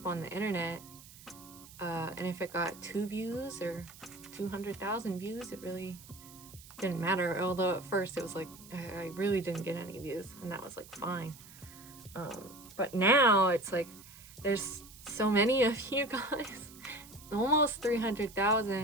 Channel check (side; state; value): right; noise; hiss, 19 dB below the sound